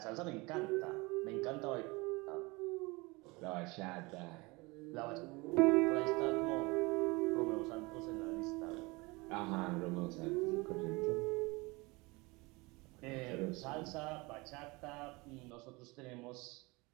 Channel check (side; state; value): left; quieter; 24.8 dB